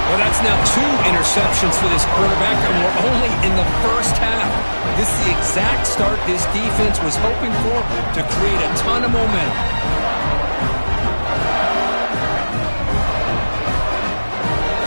Well, that's now 2 interceptions for this quarterback, and we're only in the first half. This is the exact start this defense was hoping for to create a ton of momentum.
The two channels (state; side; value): inverted; both; correlation -1.00